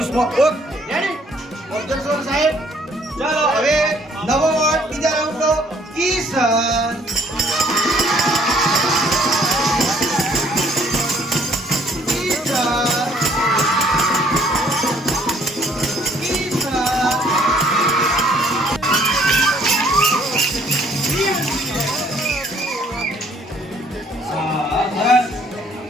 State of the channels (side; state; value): both; normal; correlation 0.62